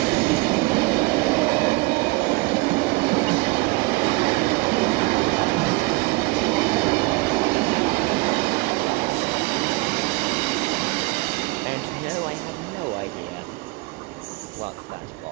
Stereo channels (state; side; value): quieter; left; 24.3 dB